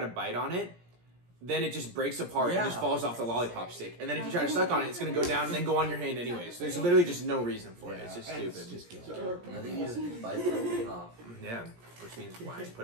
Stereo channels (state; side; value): late; left; 17 ms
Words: bite on it, then it just breaks apart and just falls off the lollipop stick. And then if you try to suck on it, it's going to go down and then go on your hand anyways. There's literally just no reason for it. It's just stupid. I think you just bite the whole thing off. Yeah, which means why I